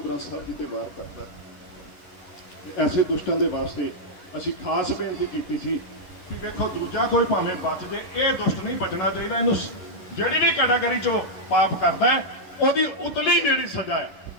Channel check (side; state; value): right; late; 10 ms